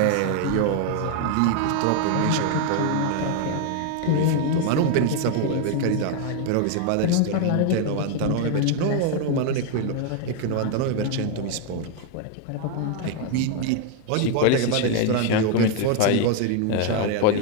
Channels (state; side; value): different; both; correlation 0.01